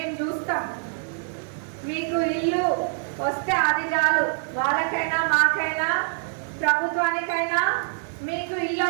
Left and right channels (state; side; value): silent; left; digital silence